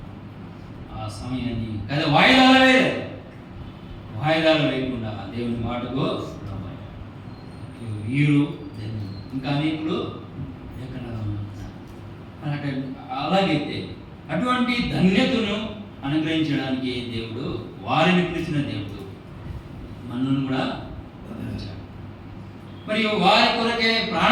ఆ సమయాన్ని కదా వాయిదాలు వేయకుండా దేవుని మాటకు వీరు ఇంకా అనేకులు అలాగైతే అటువంటి ధన్యతను అనుగ్రహించడానికి దేవుడు వారిని పిలిచిన దేవుడు మనల్ని కూడా మరియు వారి కొరకే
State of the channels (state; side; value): identical; both; correlation 1.00